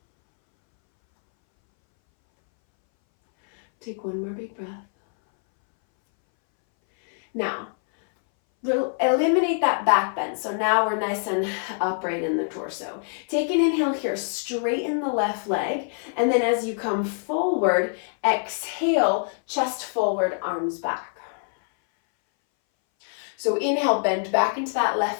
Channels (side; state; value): right; silent; 61 dB below the other